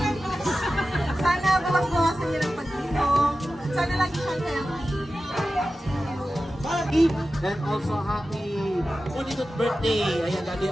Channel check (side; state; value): both; normal; correlation 0.94